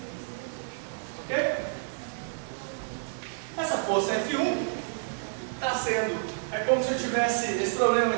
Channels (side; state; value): left; silent; 57 dB below the other